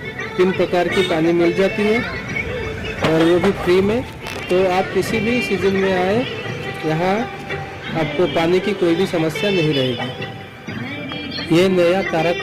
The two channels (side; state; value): both; identical; correlation 1.00